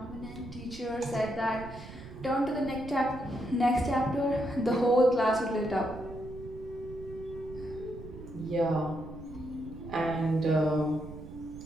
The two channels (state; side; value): noise; right; rumble, 14 dB below the sound